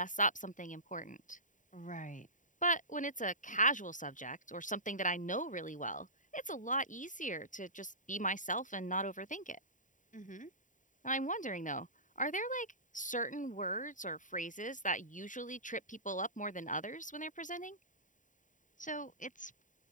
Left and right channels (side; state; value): right; late; 0.37 ms